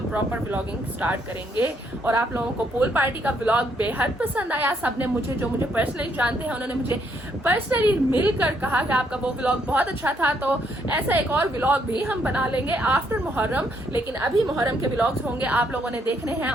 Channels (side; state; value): both; normal; correlation 0.72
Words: प्रॉपर व्लॉगिंग स्टार्ट करेंगे। और आप लोगों को पूल पार्टी का व्लॉग बेहद पसंद आया, सबने मुझे, जो मुझे पर्सनली जानते हैं, उन्होंने मुझे पर्सनली मिलकर कहा कि आपका वो व्लॉग बहुत अच्छा था, तो ऐसा एक और व्लॉग भी हम बना लेंगे आफ्टर मुहर्रम। लेकिन अभी मुहर्रम के व्लॉग्स होंगे, आप लोगों ने देखने हैं